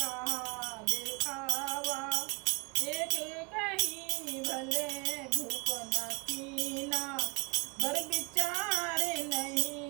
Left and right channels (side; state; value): left; quieter; 30.4 dB